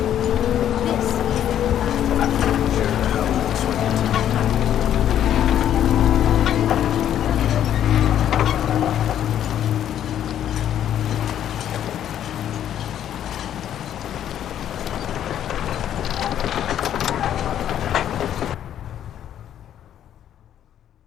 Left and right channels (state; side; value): quieter; right; 10.5 dB